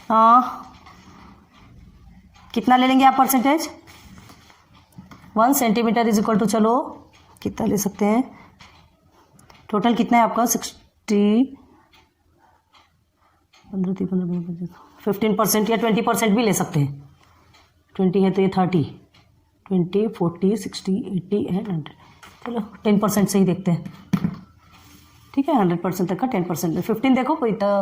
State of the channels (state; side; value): identical; both; correlation 1.00